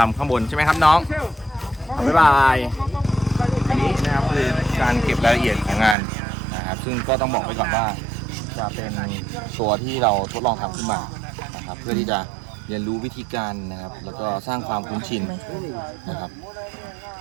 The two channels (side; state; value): left; drops out; at 6.0 s